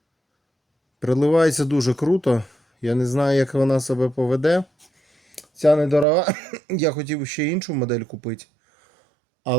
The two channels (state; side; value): drops out; left; at 6.1 s